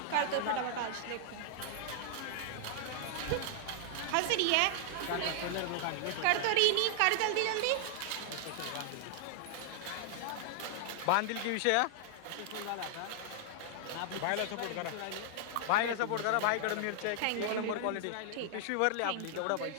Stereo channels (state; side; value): different; both; correlation -0.01